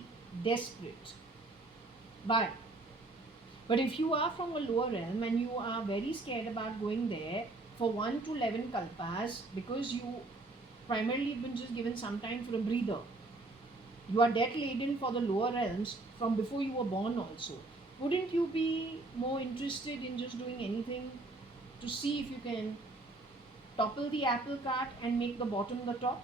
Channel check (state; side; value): quieter; left; 3.0 dB